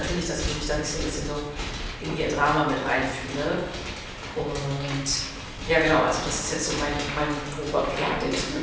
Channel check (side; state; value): both; identical; correlation 1.00